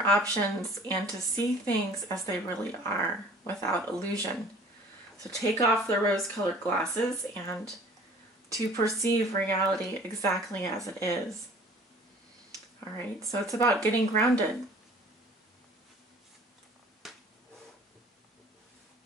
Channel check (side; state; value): both; normal; correlation 0.49